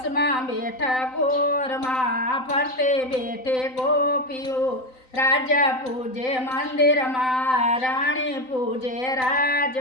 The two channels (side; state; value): right; late; 3.9 ms